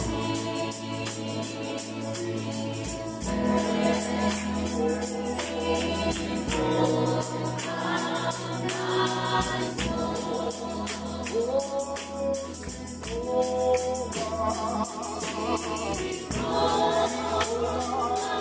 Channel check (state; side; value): identical; both; correlation 1.00